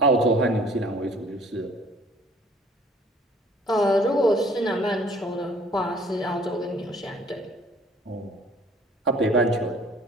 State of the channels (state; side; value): normal; both; correlation 0.55